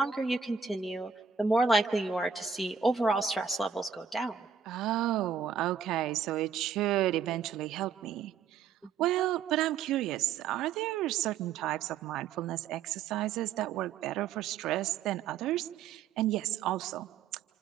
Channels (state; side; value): quieter; left; 6.6 dB